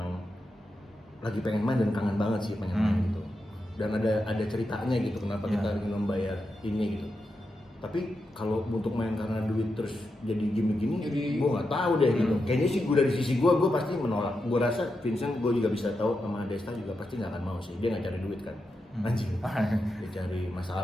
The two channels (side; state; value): both; normal; correlation 0.87